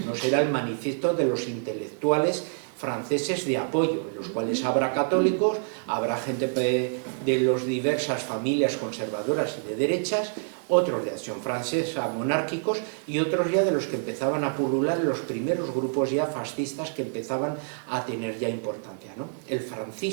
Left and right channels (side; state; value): left; silent; digital silence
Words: Uno será el manifiesto de los intelectuales franceses de apoyo, en los cuales habrá católicos, habrá gente de las diversas familias conservadoras y de derechas, otros de Acción Francesa monárquicos y otros ya de los que empezaban a pulular los primeros grupos ya fascistas que empezaban a tener ya importancia, ¿no? El